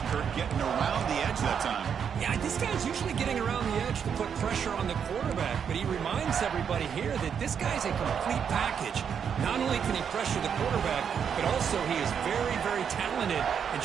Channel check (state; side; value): quieter; left; 7.5 dB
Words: Kirk, getting around the edge that time. Yeah, this guy's usually getting around the edge to put pressure on the quarterback, but he reminds everybody here that this guy's a complete package. Not only can he pressure the quarterback, but also he is very, very talented and